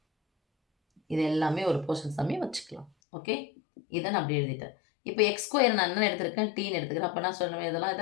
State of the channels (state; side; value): drops out; right; at 2.9 s